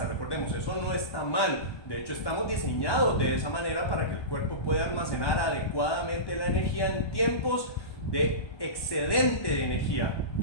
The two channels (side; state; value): right; late; 1.3 ms